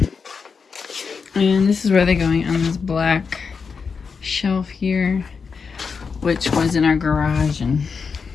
And this is where they're going, on this black shelf here, which was in our garage, and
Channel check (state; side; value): quieter; right; 5.5 dB